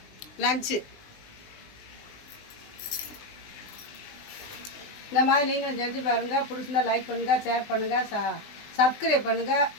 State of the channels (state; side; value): late; right; 19 ms